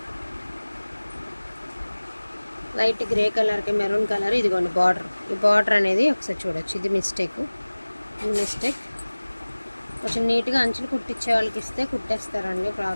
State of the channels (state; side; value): inverted; both; correlation -1.00